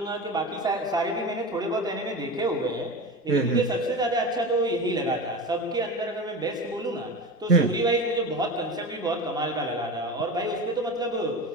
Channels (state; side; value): normal; both; correlation 0.28